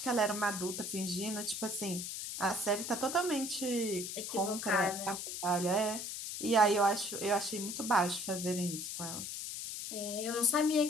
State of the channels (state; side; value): noise; left; hiss, 6 dB below the sound